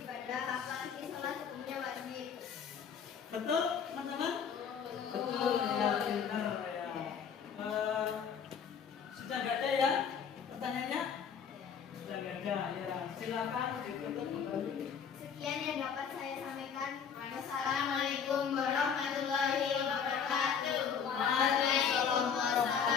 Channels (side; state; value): right; quieter; 7.1 dB